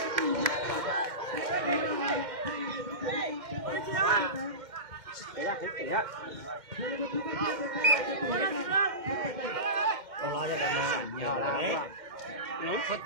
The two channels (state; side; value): late; left; 2.1 ms